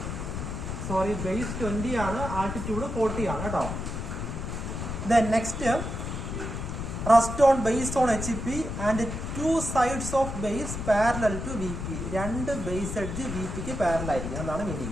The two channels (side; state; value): left; noise; rumble, 5 dB below the sound